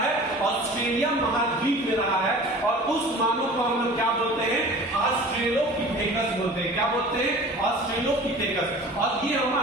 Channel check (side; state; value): both; normal; correlation 0.41